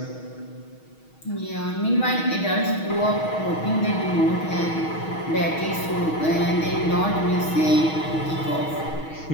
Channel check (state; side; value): late; right; 6.3 ms